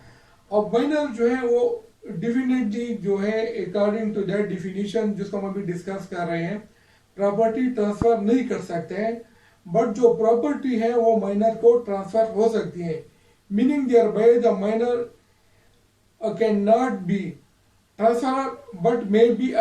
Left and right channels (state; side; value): identical; both; correlation 1.00